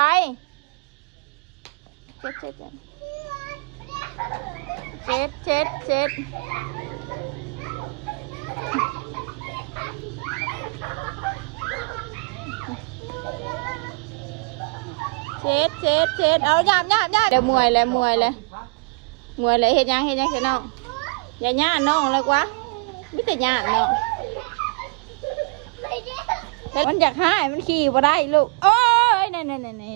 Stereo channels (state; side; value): quieter; left; 31.2 dB